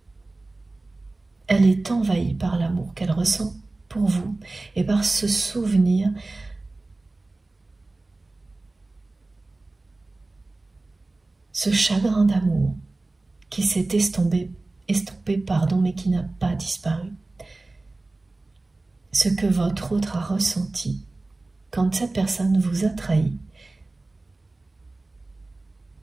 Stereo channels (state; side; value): quieter; left; 3.1 dB